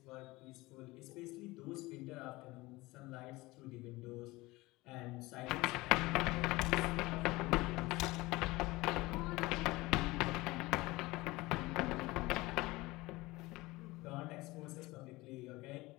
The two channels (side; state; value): right; quieter; 20.9 dB